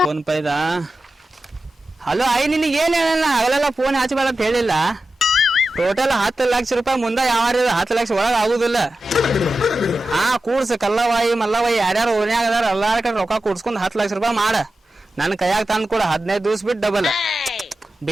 ಫೋನ್ ಪೈದ. ಹಲೋ ಐ, ನಿನಗೆ ಏನ್ ಹೇಳಲ್ಲ? ಹಗಲೆಲ್ಲ ಫೋನ್ ಹಚ್ಚಬೇಡ ಅಂತ ಹೇಳಿಲ್ಲ. ಟೋಟಲ್ 10 ಲಕ್ಷ ರೂಪಾಯಿ ಮುಂದೆ ಯಾವ 10 ಲಕ್ಷ ಒಳಗೆ ಆಗುದಿಲ್ಲ. ಕೂಡ್ಸ ಕಲ್ಲವಾಯಿ ಮಲ್ಲವಾಯಿ ಯಾರ್ಯಾರು ಓನ್ಯಾಗ ಅದಾರ ಎಲ್ಲಾರ ಕಡೆ ರೊಕ್ಕ ಕೂಡ್ಸ್ಕೊಂಡ್ 10 ಲಕ್ಷ ರೂಪಾಯಿ ಮಾಡ. ನನ್ ಕೈಯಾಗ ತಂದ್ ಕೂಡ 15 ದಿವ್ಸ ಬಿಟ್ಟು ಡಬಲ್.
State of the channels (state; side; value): normal; both; correlation 0.93